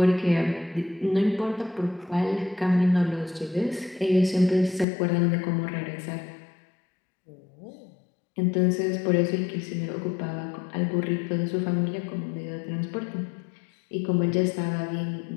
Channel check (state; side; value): drops out; right; at 4.9 s